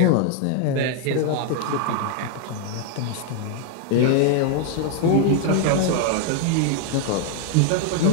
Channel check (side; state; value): both; different; correlation 0.00